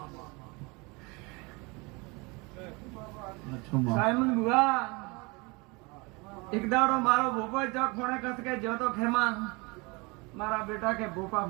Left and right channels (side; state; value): left; quieter; 27.1 dB